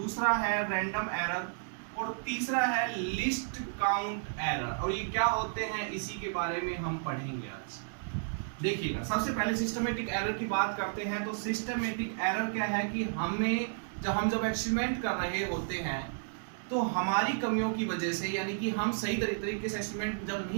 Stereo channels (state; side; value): silent; left; 56 dB below the other